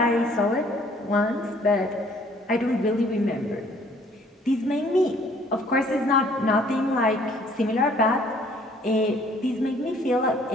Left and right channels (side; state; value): both; normal; correlation 0.59